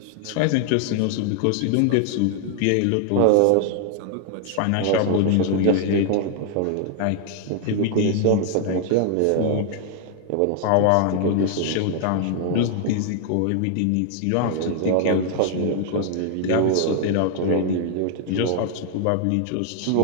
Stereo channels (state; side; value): different; both; correlation 0.00